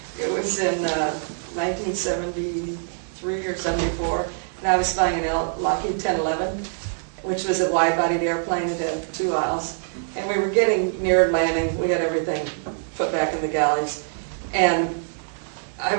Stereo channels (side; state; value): left; silent; 62 dB below the other